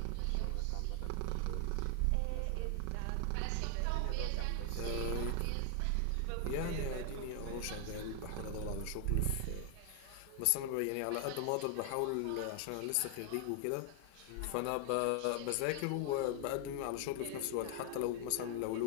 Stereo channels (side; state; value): both; different; correlation 0.00